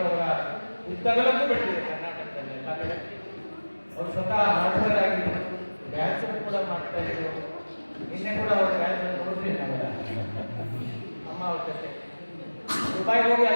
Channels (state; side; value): inverted; both; correlation -1.00